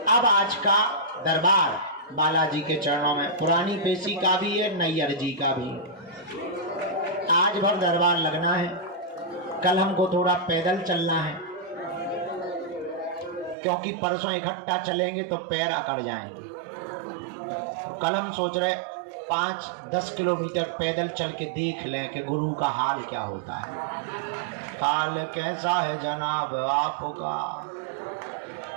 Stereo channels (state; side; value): drops out; left; at 13.6 s